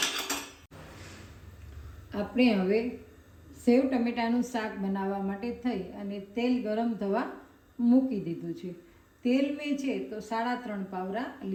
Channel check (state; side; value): identical; both; correlation 1.00